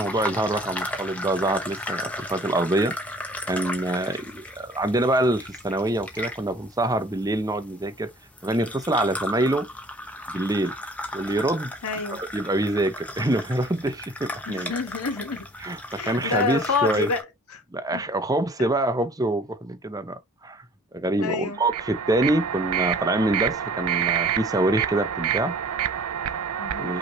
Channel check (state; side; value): normal; both; correlation 0.51